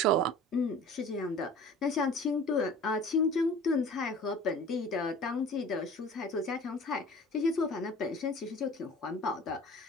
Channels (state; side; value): normal; both; correlation 0.43